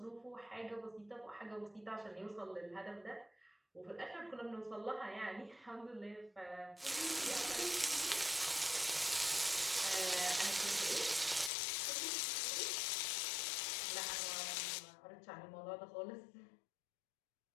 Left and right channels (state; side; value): drops out; right; at 11.5 s